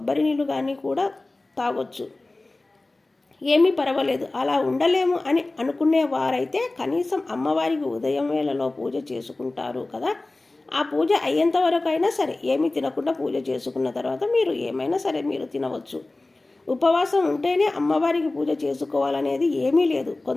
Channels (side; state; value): right; quieter; 3.0 dB